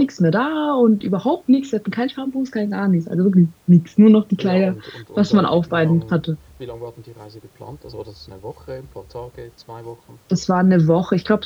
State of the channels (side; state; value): both; identical; correlation 1.00